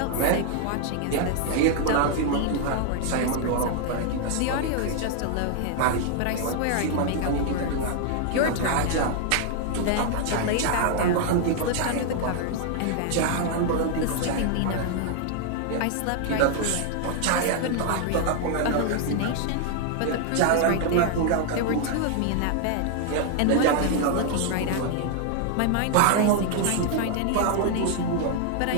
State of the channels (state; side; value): different; both; correlation 0.00